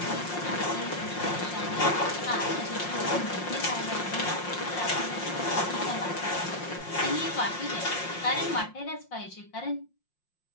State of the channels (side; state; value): right; late; 5.6 ms